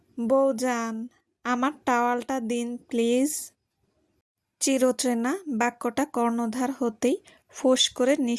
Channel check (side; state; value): both; identical; correlation 1.00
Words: বউজান, আমার টাওয়ালটা দিন প্লিজ। চিরচেনা বাক্যটা কর্ণধার হতেই ফোঁস করে